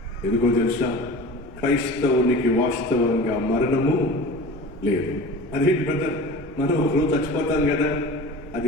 ఎందుకో తెలుసా? క్రైస్తవునికి వాస్తవంగా మరణము లేదు. అదేంటి బ్రదర్, మనం ఒకరోజు చచ్చిపోతాం కదా,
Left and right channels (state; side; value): noise; left; rumble, 25 dB below the sound